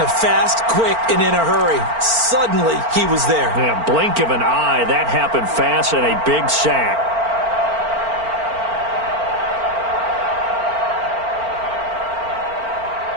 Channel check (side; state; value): left; late; 4.4 ms